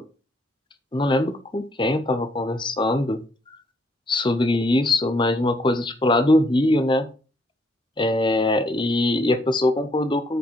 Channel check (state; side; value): normal; both; correlation 0.69